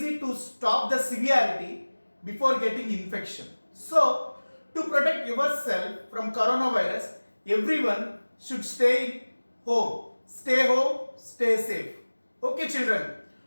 to stop the severity before getting infection. So to protect yourself from coronavirus, everyone should stay home, stay safe. Okay children,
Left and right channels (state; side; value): inverted; both; correlation -1.00